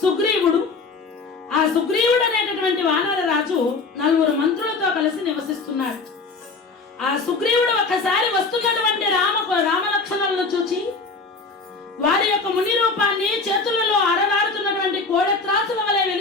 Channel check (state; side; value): quieter; right; 4.1 dB